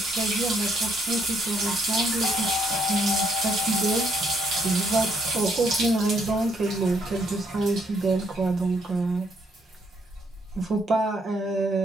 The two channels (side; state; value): both; normal; correlation 0.71